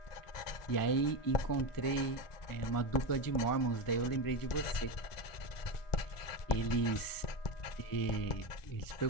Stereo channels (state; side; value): late; right; 1.4 ms